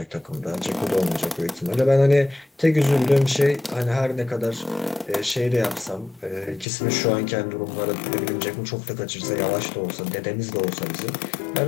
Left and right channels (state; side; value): drops out; right; at 6.7 s